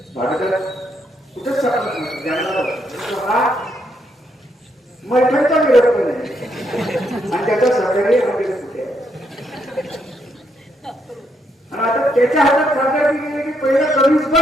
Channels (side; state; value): both; normal; correlation 0.76